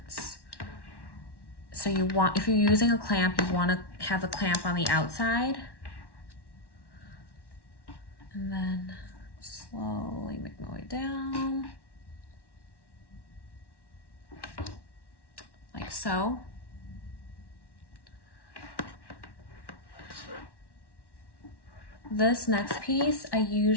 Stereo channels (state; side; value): late; right; 1.1 ms